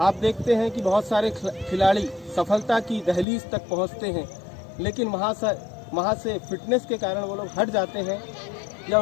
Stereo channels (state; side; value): drops out; right; at 3.2 s